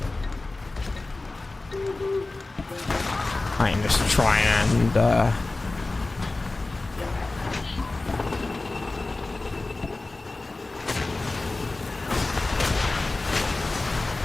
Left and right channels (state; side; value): quieter; right; 3.2 dB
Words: I am just trying and